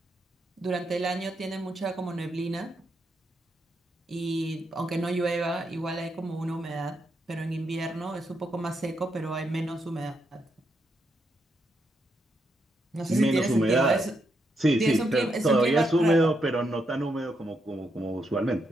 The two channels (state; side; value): normal; both; correlation 0.80